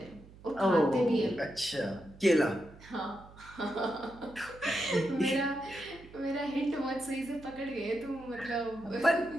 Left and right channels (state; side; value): noise; right; hum, 21 dB below the sound